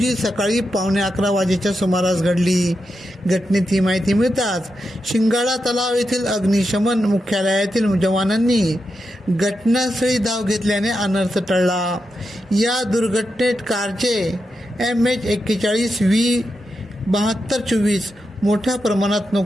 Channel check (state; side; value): normal; both; correlation 0.87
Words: सकाळी 11:15 वाजेच्या सुमारास घडली. घटनेची माहिती मिळताच शिंगाडा तलाव येथील अग्निशमन मुख्यालयातील जवानांनी घटनास्थळी धाव घेतल्याने अनर्थ टळला. या दुर्घटनेत कारचे MH41V7224 मोठ्या प्रमाणात